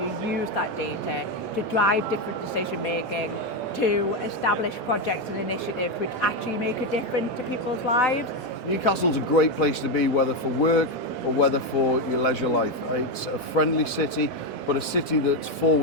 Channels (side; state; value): both; normal; correlation 0.08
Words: use that data to drive different decision making, to establish projects and initiatives which actually make a difference to people's lives. Newcastle's a great place to be, whether for work or whether for your leisure life. It's a friendly city, but a city that's